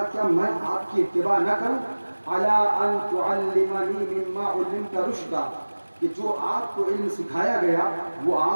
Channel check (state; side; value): inverted; both; correlation -1.00